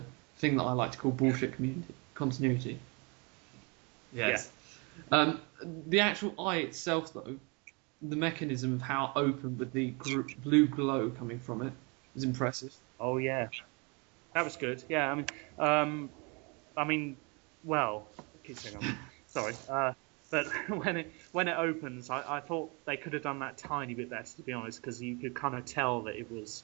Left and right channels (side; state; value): left; quieter; 31.0 dB